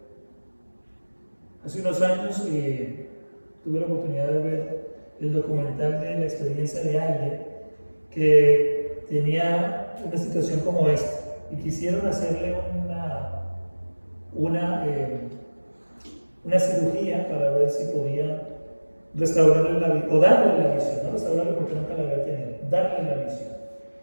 Hace unos años tuve la oportunidad de ver el documental de la experiencia de alguien que tenía una situación como esta y quisieron hacerle una cirugía para ver si podían restaurarle la visión, o darle la visión, no restaurarle porque nunca la había tenido, darle la visión.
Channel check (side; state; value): both; inverted; correlation -1.00